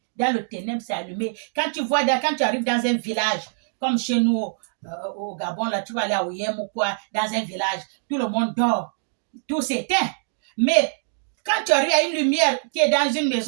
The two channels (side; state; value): left; silent; digital silence